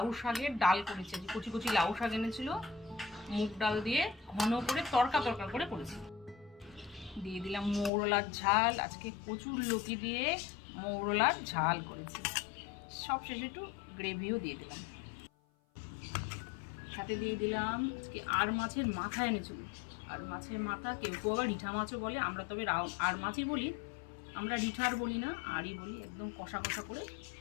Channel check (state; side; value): drops out; right; at 7.9 s